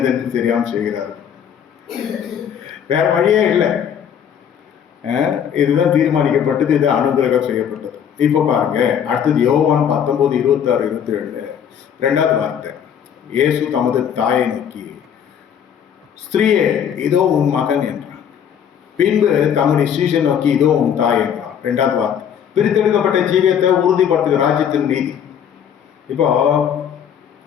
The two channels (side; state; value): right; quieter; 8.6 dB